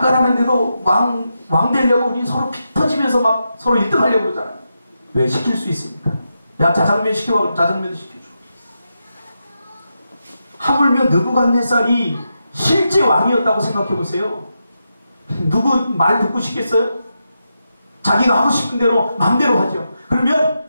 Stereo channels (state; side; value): inverted; both; correlation -0.87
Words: 하는데도 왕 되려고 우리 서로 피 터지면서 막 서로 1등 하려고 그러잖아요. 왜? 시킬 수 있습니까? 야 짜장면 시켜봐. 그럼 짜장면도 시켜줘. 하물며 느부갓네살이 실제 왕이었다고 생각해보세요. 누구 말 듣고 싶겠어요? 자기가 하고 싶은 대로 마음대로 하죠. 그러면